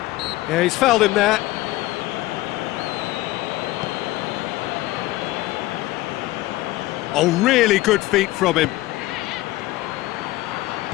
Yeah, he's fouled him there. Oh, really good feet from him.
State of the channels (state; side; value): quieter; right; 17.8 dB